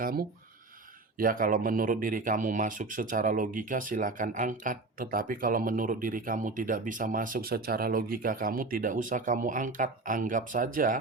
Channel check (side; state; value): left; quieter; 3.4 dB